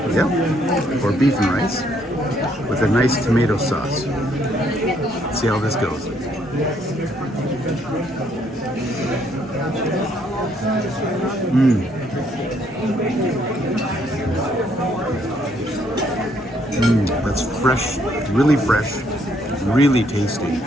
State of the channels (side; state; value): both; normal; correlation 0.69